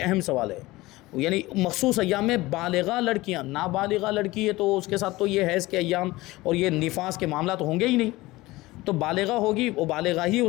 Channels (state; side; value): quieter; right; 19.6 dB